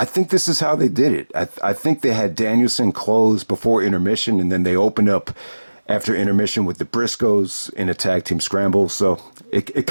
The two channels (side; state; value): both; inverted; correlation -1.00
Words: think this is how they did it. I think they had Danielson close before intermission, and then they opened up after intermission with the Briscoes in a tag team scramble. So it